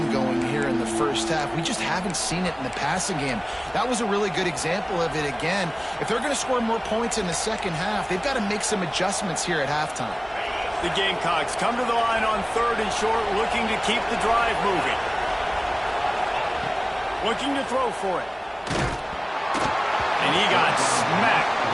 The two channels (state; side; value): identical; both; correlation 1.00